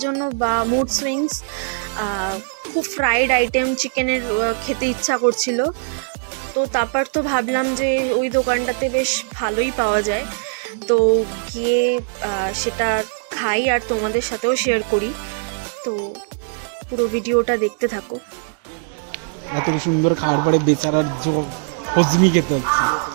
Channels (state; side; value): silent; left; digital silence